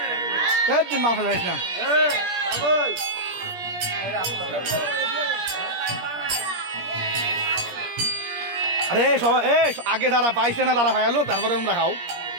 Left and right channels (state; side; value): late; left; 17 ms